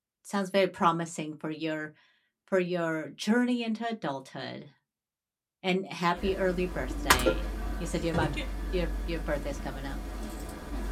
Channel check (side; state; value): both; identical; correlation 1.00